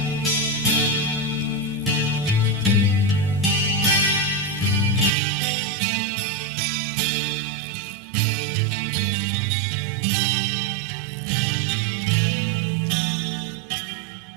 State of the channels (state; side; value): drops out; left; at 5.1 s